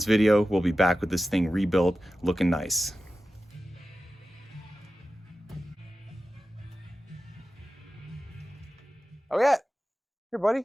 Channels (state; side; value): normal; both; correlation 0.93